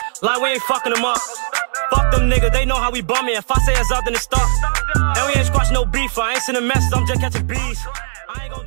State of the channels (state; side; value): silent; left; digital silence